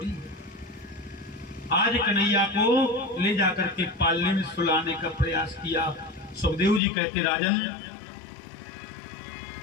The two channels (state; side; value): drops out; right; at 6.8 s